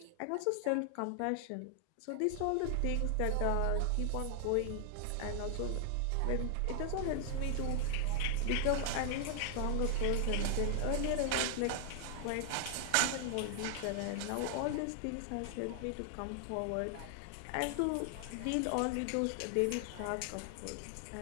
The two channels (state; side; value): different; both; correlation 0.00